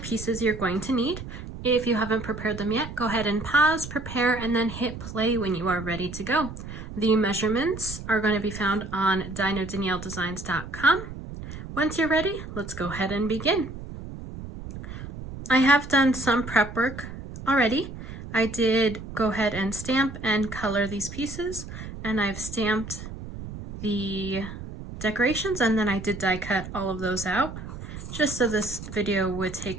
you're going to need. If you haven't prepared them yet, go ahead and pause, prepare, and then hit play when you are ready to go. The measurements are going to be found on dinodanielledesigns.com. Once you're ready, let's go ahead and begin. I have done some prep work already. I did go ahead and stamp and color these pieces, and I've stamped the decorations, and then I did die cut all of those out just so this video would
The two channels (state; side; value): noise; right; rumble, 10 dB below the sound